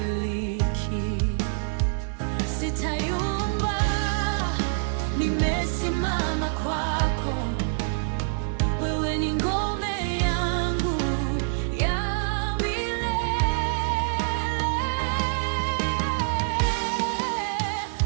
Sitayumba, nimesimama kwako. Wewe ni ngome yangu ya milele.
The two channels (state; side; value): silent; left; 61 dB below the other